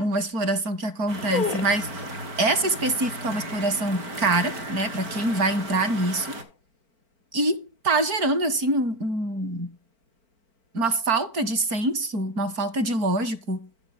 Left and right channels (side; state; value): left; late; 4.5 ms